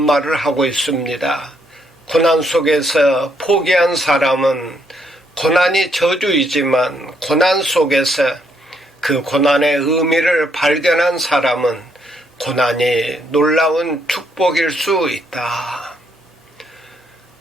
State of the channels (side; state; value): both; normal; correlation 0.73